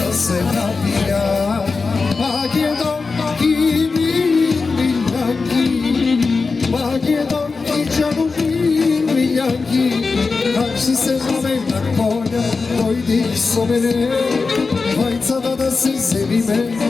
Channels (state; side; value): quieter; right; 4.3 dB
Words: se napija. Magedon i čarobin miljanki, Kači se zove na konja, dojdi so mene, Vajca da se zebi me,